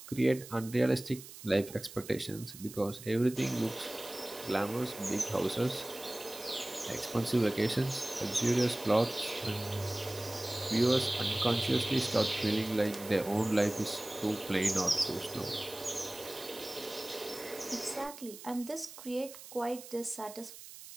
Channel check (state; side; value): noise; right; hiss, 15 dB below the sound